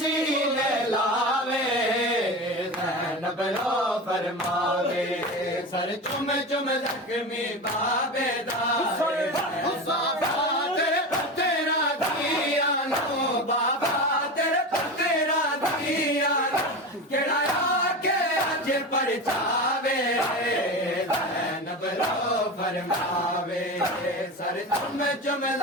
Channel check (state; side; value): normal; both; correlation 0.25